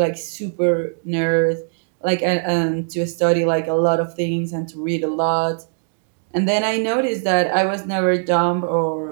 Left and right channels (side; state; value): left; silent; digital silence